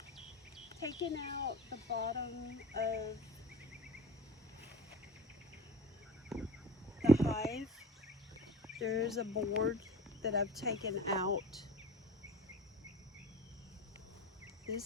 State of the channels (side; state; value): both; normal; correlation 0.37